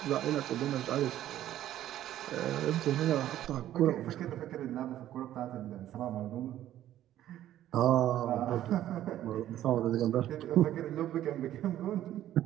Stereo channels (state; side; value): quieter; left; 12.6 dB